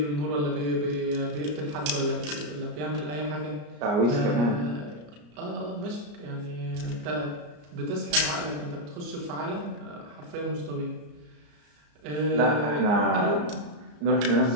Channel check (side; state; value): left; late; 34 ms